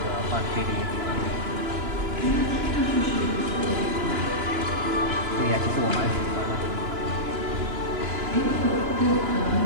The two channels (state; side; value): late; left; 2.9 ms